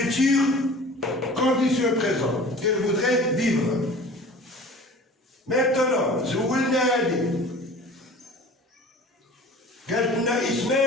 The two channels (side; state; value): both; normal; correlation 0.42